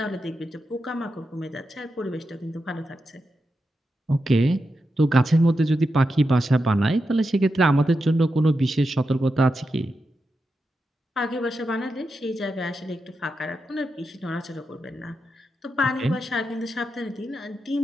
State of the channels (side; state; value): both; normal; correlation 0.88